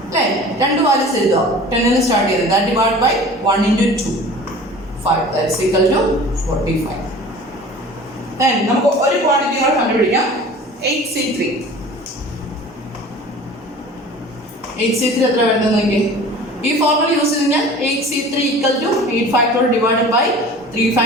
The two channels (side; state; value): both; normal; correlation 0.42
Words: അല്ലേ? 2 വാല്യൂസ് എഴുതുക. 10ൽ സ്റ്റാർട്ട് ചെയ്തത്. That divide by 1 into 2 5, that's equal to 45. Then നമുക്ക് ഒരു ക്വാണ്ടിറ്റി കൂടെ കണ്ടുപിടിക്കാം. 8C3 എത്ര വരുന്നത് നോക്കി? ഈ ഫോർമുല യൂസ് ചെയ്ത് കഴിഞ്ഞാൽ 8C3 equal to 8 factorial divided by 3